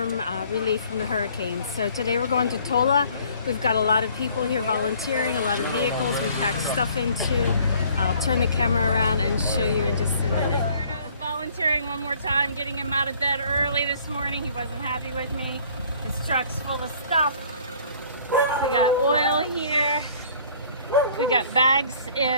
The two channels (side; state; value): both; inverted; correlation -0.56